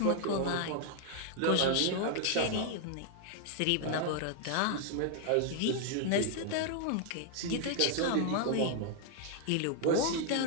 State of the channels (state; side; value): different; both; correlation 0.00